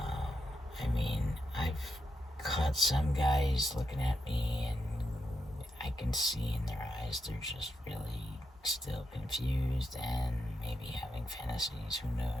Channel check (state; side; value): normal; both; correlation 0.85